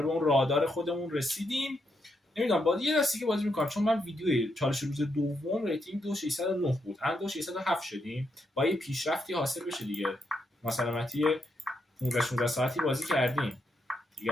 به اون رادار خودمون رسیدیم. نمیدونم بازی یه دستی که بازی میکنم، چون من ویدیوی چالش روز دوم ریتینگ 2609 بود، الان 2607 شدیم. با یه پیشرفتی حاصل بشه دیگه. مثلا 15-16 ساعتی بازی کردیم دیگه،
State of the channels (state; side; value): normal; both; correlation 0.80